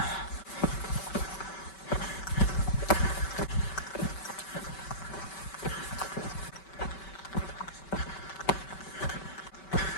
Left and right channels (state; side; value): late; right; 5.2 ms